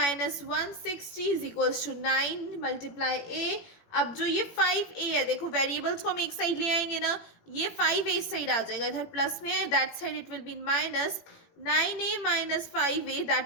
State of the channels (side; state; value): right; late; 18 ms